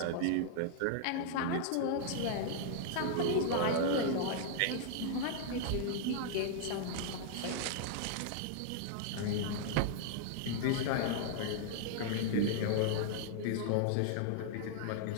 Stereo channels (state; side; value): different; both; correlation -0.01